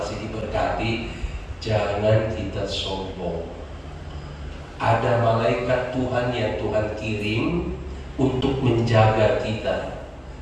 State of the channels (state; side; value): identical; both; correlation 1.00